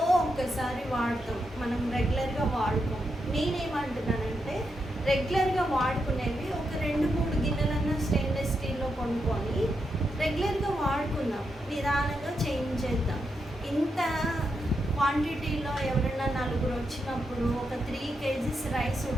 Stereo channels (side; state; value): both; normal; correlation 0.84